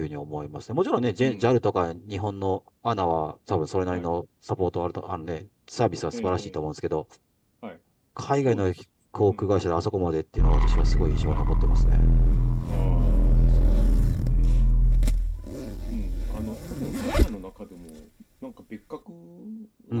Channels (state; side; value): identical; both; correlation 1.00